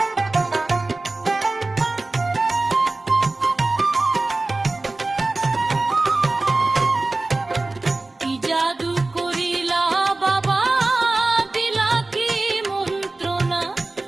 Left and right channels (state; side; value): quieter; left; 3.1 dB